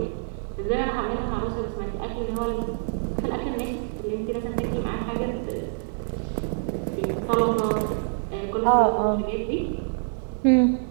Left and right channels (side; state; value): left; silent; digital silence